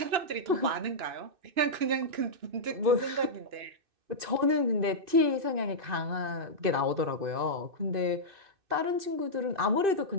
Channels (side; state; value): left; late; 2.6 ms